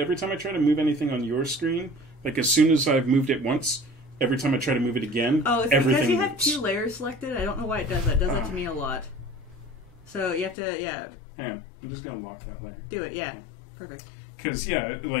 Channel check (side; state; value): right; drops out; at 10.6 s